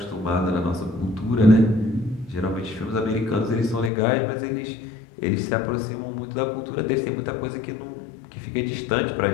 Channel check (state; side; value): drops out; right; at 3.9 s